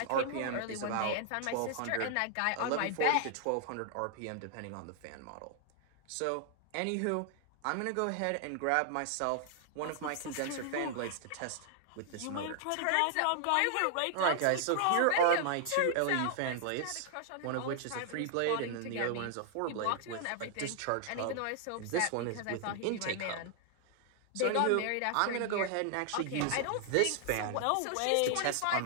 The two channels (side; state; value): both; different; correlation 0.00